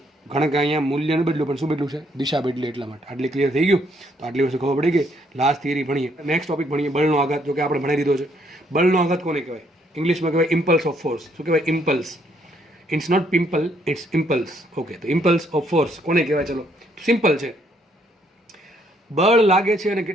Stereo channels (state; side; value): normal; both; correlation 0.69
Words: ઘણા કે અહીંયા મૂલ્ય ન બદલ્યું પણ શું બદલ્યું છે? દિશા બદલી. એટલા માટે આટલી ક્લિયર થઈ ગયું. તો આટલી વસ્તુ ખબર પડી ગઈ. લાસ્ટ થિયરી ભણીએ. નેક્સ્ટ ટોપિક ભણીએ બળનો આઘાત. જો કે આપણે ભણી દીધો છે. બળનો આઘાત કોને કહેવાય? ઇંગ્લિશમાં કહેવાય ઇમ્પલ્સ ઓફ ફોર્સ. શું કહેવાય? Impulse. It's not pimple, it's impulse. Okay, તો ઇમ્પલ્સ ઓફ ફોર્સ કોને કહેવાય? ચલો સિમ્પલ છે. બળ લાગે છે અને